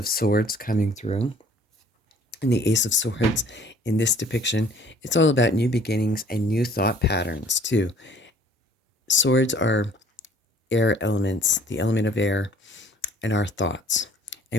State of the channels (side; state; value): both; normal; correlation 0.55